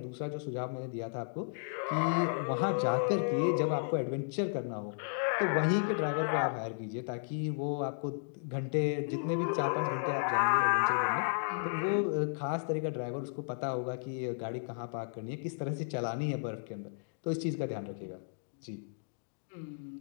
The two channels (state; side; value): silent; right; digital silence